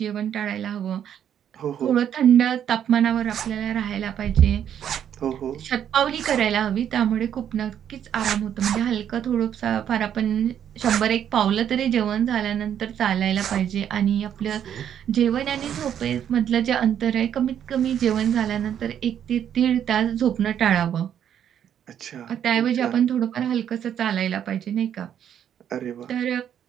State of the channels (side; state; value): left; quieter; 9.4 dB